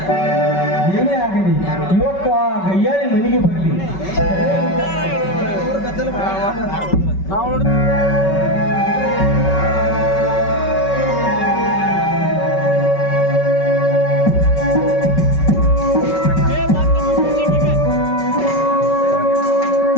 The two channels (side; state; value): right; late; 5.3 ms